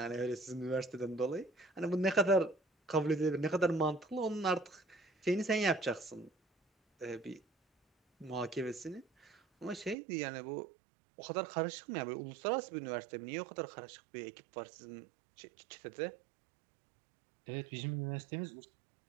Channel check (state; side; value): drops out; left; at 10.0 s